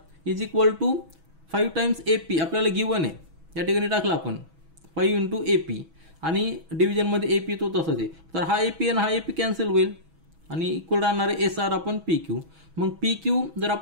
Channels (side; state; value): left; late; 6.1 ms